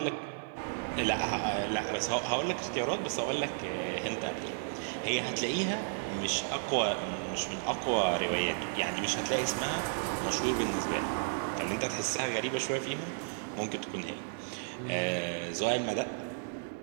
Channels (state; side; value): silent; left; digital silence